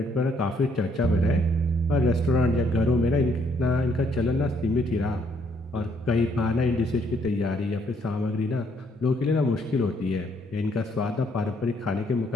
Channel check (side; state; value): both; normal; correlation 0.69